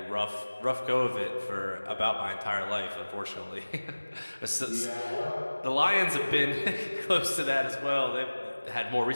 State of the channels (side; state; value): both; inverted; correlation -1.00